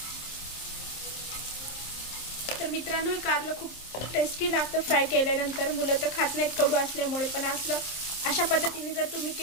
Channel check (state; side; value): late; right; 26 ms